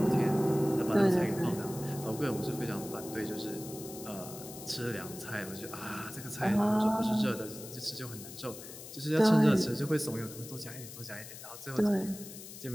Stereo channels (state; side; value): noise; left; hiss, 13 dB below the sound